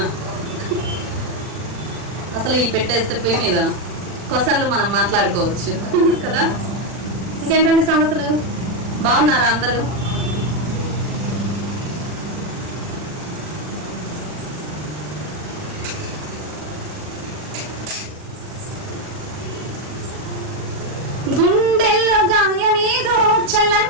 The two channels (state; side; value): late; left; 40 ms